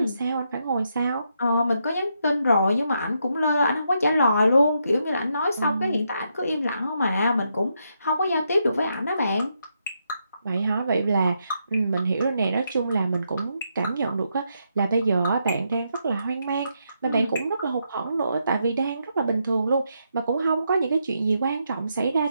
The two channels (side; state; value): both; inverted; correlation -0.80